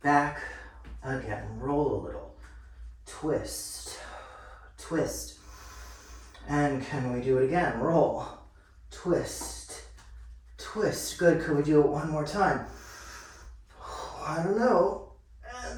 Back. Again. Roll a little. Twist. Twist. And can we do it again? Roll. Twist. Twist. Good. Could we do it one more time? I don't know.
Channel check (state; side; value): identical; both; correlation 1.00